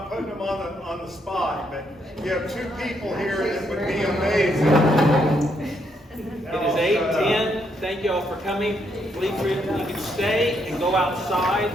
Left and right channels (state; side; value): normal; both; correlation 0.75